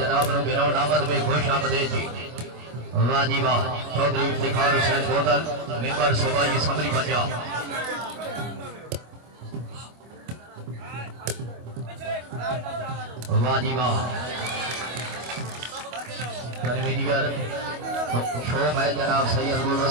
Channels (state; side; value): late; left; 25 ms